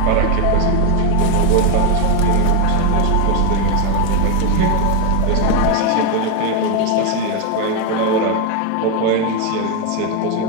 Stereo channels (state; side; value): different; both; correlation 0.02